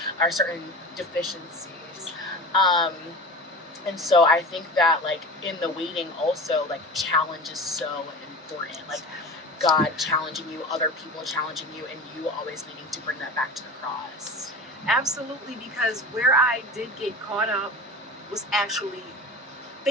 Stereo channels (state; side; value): normal; both; correlation 0.32